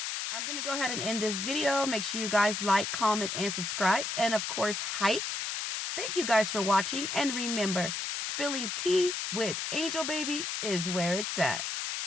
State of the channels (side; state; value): left; noise; hiss, 3 dB below the sound